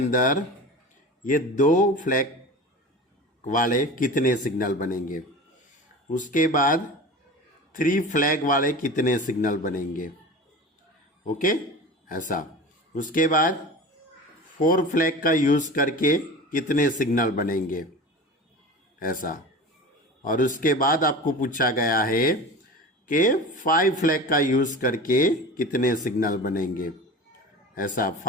ये 2 फ्लैग वाले कितने सिग्नल बनेंगे। उसके बाद 3 फ्लैग वाले कितने सिग्नल बनेंगे। ओके, ऐसा। उसके बाद 4 फ्लैग का यूज करके कितने सिग्नल बनेंगे, ऐसा। और उसके बाद आपको पूछा गया है कि 5 फ्लैग का यूज करके कितने सिग्नल बनेंगे, ऐसा।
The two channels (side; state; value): both; normal; correlation 0.34